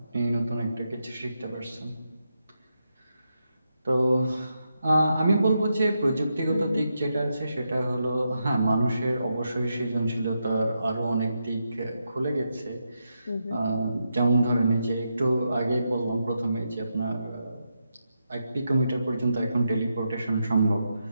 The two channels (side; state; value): both; inverted; correlation -0.84